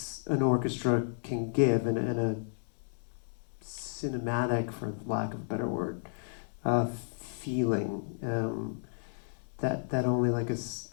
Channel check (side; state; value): right; silent; digital silence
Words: orchestra can give, and a cinematic, for lack of a better word, feeling that only like